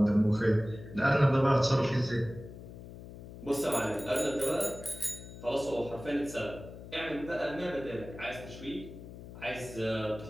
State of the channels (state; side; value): noise; left; hum, 14 dB below the sound